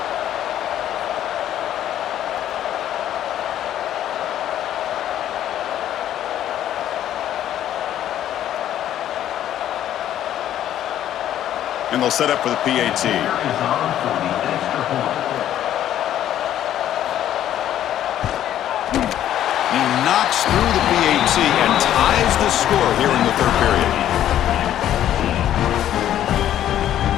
And they'll set up for the PAT. He knocks through the PAT and ties the score here in the 3rd period.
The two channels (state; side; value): quieter; right; 11.5 dB